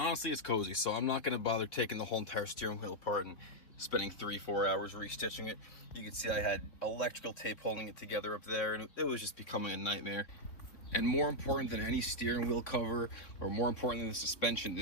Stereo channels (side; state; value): right; late; 3.3 ms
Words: it's cozy, so I'm not gonna bother taking the whole entire steering wheel apart and spending 3-4 hours restitching it. You can see I had electrical tape holding it together up there, and it was just becoming a nightmare. And more important than any steering wheel cover, or more important than the suspension,